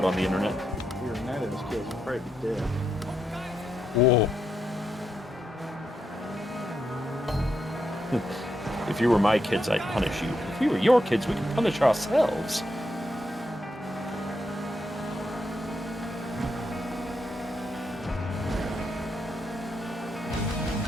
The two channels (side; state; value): both; normal; correlation 0.82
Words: on the internet. If we were Night Owls kids, we'd probably be dead. Whoa. If you were my kids, I'd punish you. If we were your kids, we could punish ourselves.